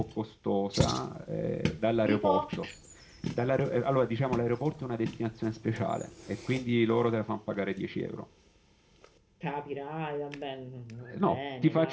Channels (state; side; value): identical; both; correlation 1.00